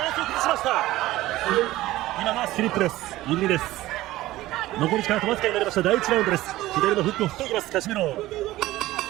ランスを崩しました今がスリップです入りです残り時間あとわずかになりました第1ラウンドです左のフックを振っていきますカシメロ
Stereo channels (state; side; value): quieter; left; 16.6 dB